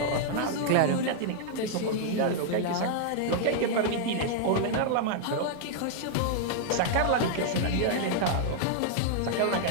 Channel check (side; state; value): both; different; correlation -0.01